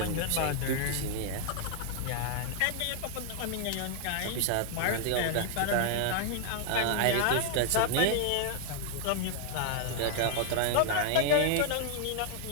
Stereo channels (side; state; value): both; different; correlation 0.00